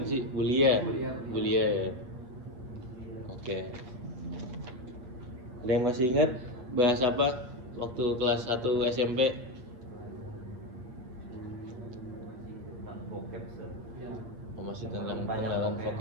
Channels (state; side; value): late; left; 7.9 ms